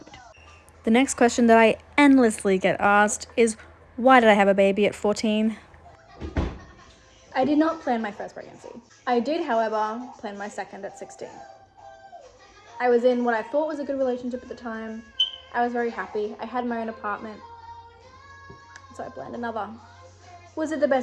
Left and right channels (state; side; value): identical; both; correlation 1.00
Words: The next question that I endlessly get asked is, why did I have a baby at 14? I did not plan my first pregnancy. I did, however, plan my second at 16. I was in what I thought was a good relationship at the time. I was very happy. I had my own apartment. So I planned another. Was it the